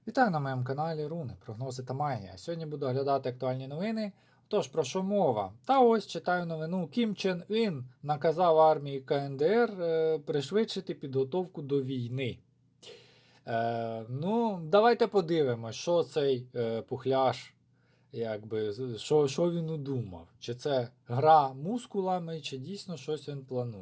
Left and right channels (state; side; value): identical; both; correlation 1.00